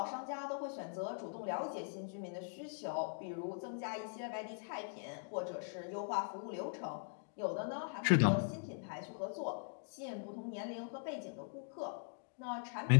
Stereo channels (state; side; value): silent; right; digital silence